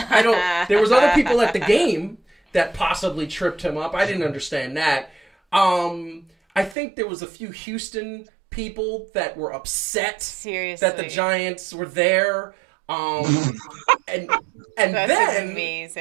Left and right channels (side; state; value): left; drops out; at 6.8 s